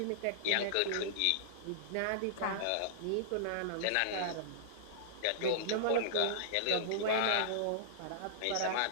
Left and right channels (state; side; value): different; both; correlation -0.02